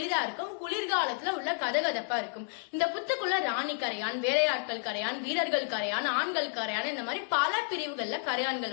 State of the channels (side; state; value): right; silent; 57 dB below the other